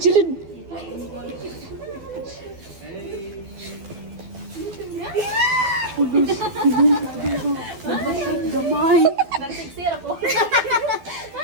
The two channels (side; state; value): left; late; 12 ms